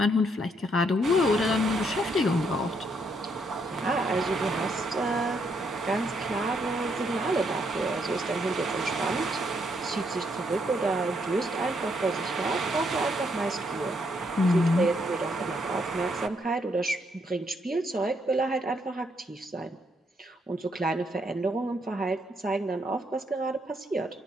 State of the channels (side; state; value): both; normal; correlation 0.74